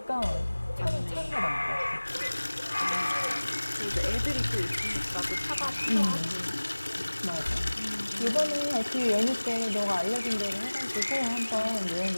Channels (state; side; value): inverted; both; correlation -1.00